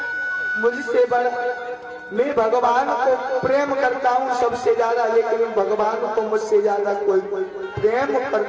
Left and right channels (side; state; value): both; identical; correlation 1.00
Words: मुझसे बड़ा मैं भगवान को प्रेम करता हूँ सबसे ज्यादा, लेकिन भगवान को मुझसे ज्यादा कोई प्रेम